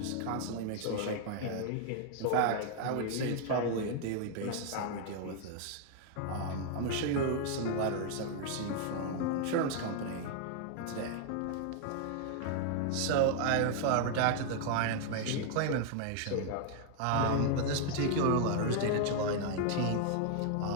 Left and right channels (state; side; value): different; both; correlation 0.00